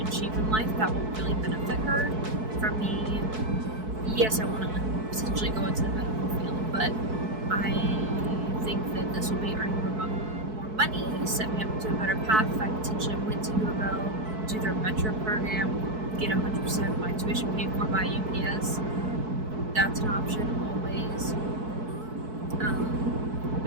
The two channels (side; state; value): left; late; 4.6 ms